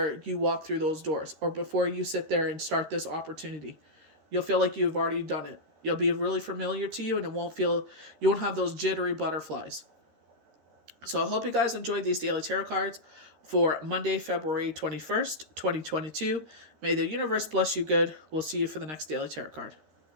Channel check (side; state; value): left; late; 13 ms